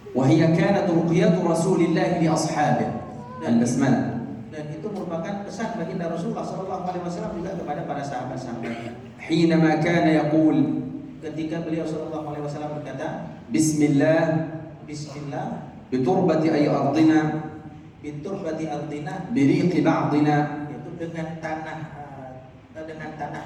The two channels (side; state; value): both; identical; correlation 1.00